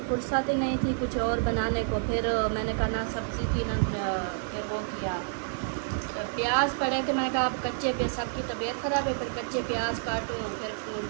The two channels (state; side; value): silent; left; digital silence